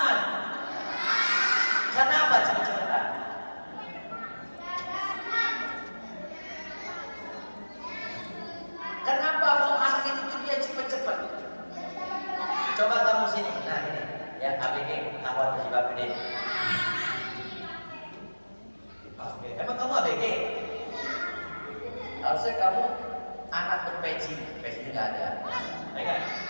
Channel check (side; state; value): both; inverted; correlation -1.00